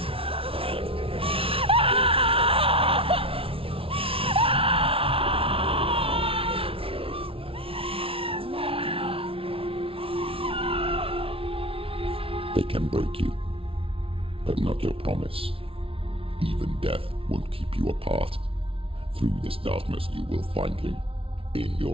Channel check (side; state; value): left; late; 0.26 ms